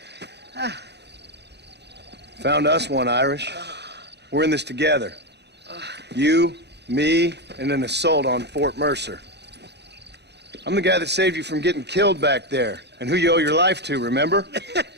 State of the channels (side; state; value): left; late; 0.49 ms